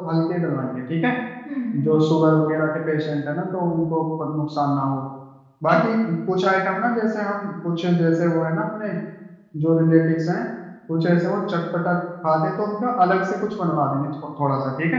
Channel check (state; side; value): identical; both; correlation 1.00